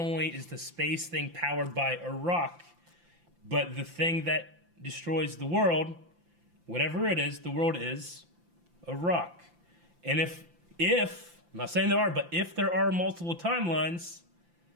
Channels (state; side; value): late; left; 5.8 ms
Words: is the space thing powered by a rock, but the thing that destroys the world, whatever it is, the world is a rock. And if I'm not saying there are, but if there are multiple timelines,